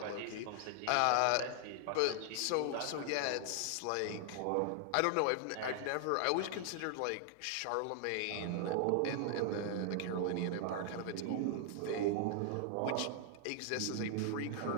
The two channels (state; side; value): different; both; correlation 0.00